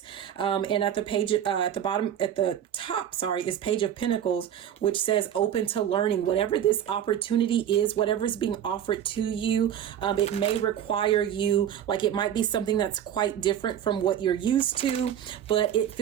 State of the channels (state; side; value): quieter; left; 10.0 dB